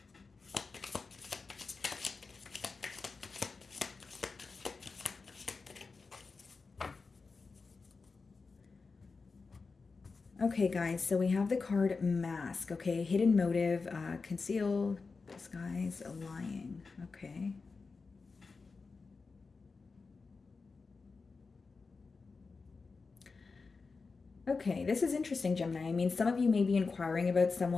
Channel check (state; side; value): quieter; right; 4.4 dB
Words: Okay, guys, so we have the card Mask, okay? Hidden motive, conceal, disguise, lying, okay? Okay, this is interesting, Gemini. I mean, some of you may be inquiring about